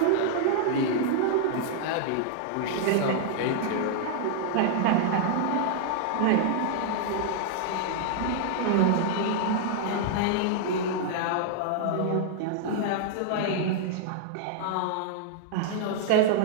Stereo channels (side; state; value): both; different; correlation -0.01